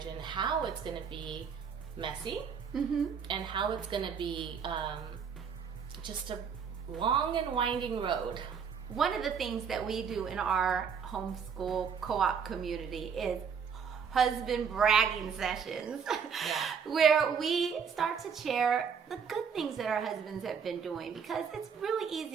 and how it's going to be messy and how it's going to be just a long and winding road. One of the things that we do in our homeschool co-op community is husband bragging sessions, where we start to share the good things that our husbands have been doing, because it's really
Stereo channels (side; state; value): left; quieter; 6.7 dB